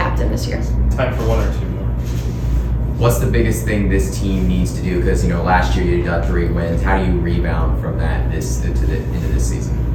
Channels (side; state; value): both; identical; correlation 1.00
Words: this year. Time for one or two more. What's the biggest thing this team needs to do? Because last year you got 3 wins. How do you rebound from that into this season?